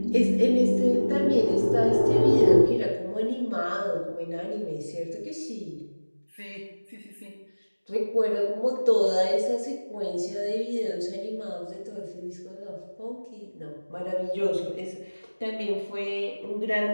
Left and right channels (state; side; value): inverted; both; correlation -1.00